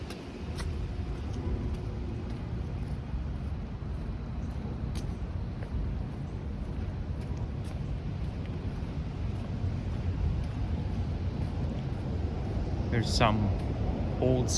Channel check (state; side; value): identical; both; correlation 1.00